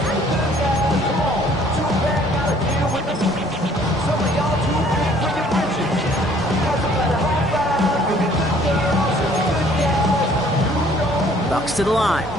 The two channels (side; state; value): both; normal; correlation 0.58